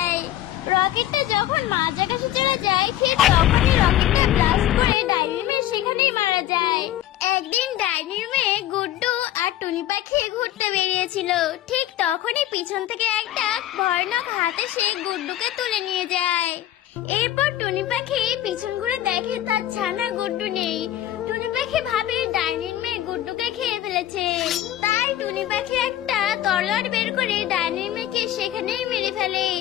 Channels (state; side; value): quieter; right; 13.0 dB